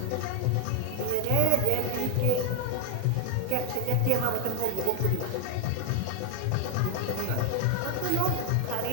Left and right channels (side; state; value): both; different; correlation 0.01